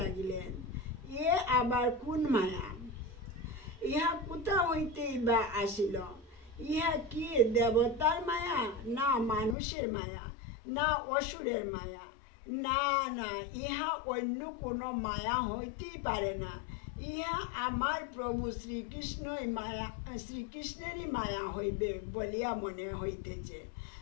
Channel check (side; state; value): right; drops out; at 9.6 s